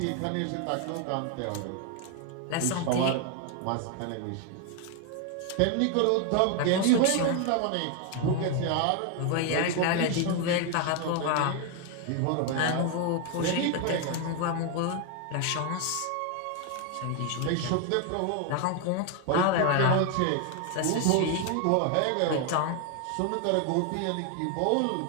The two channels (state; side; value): different; both; correlation 0.01